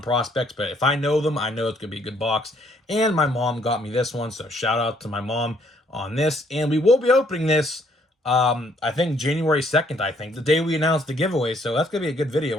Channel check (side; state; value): both; normal; correlation 0.66